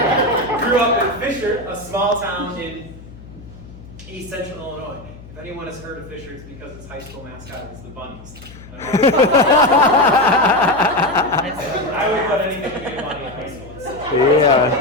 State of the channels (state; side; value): noise; left; hum, 18 dB below the sound